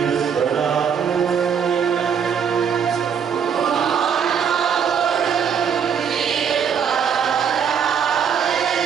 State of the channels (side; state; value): left; quieter; 7.4 dB